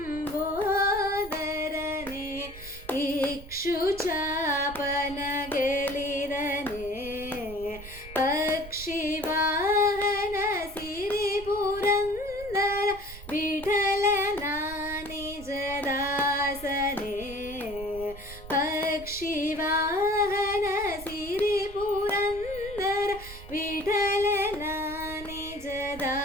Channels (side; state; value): right; noise; rumble, 15 dB below the sound